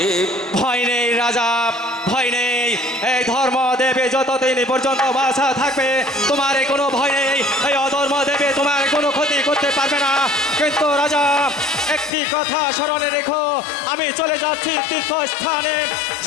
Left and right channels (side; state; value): right; drops out; at 12.1 s